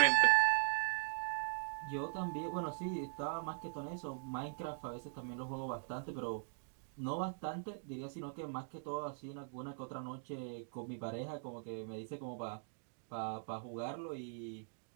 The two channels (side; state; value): left; silent; digital silence